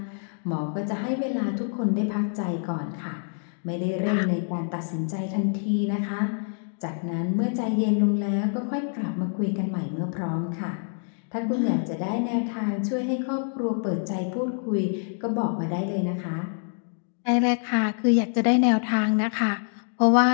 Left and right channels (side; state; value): right; silent; 61 dB below the other